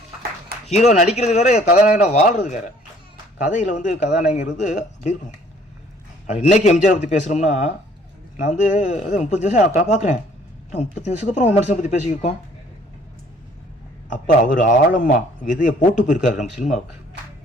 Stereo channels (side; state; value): both; normal; correlation 0.58